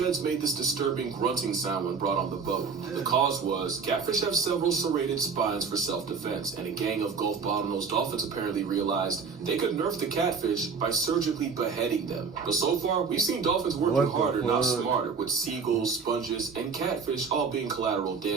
made this disturbing grunting sound when brought on the boat. The cause was, catfish have several serrated spines for self-defense, and a gang of Gulf bottlenose dolphins apparently realized they could nerf the catfish by surgically beheading them. But so far, we've seen dolphins working harder, not smarter, with seagulls, sponges, and catfish all being collateral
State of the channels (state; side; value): quieter; left; 5.5 dB